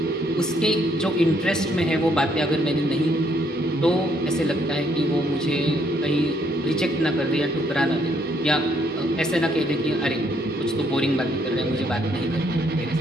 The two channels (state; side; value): normal; both; correlation 0.70